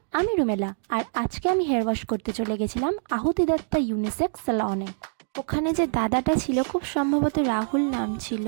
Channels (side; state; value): left; silent; digital silence